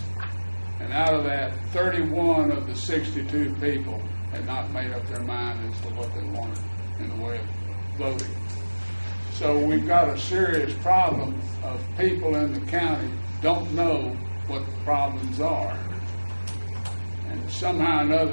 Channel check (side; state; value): both; inverted; correlation -1.00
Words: And out of that, 31 of the 62 people had not made up their mind as to what they wanted in the way of voting. So we've got a serious problem of people in the county don't know what the problems are. And somehow or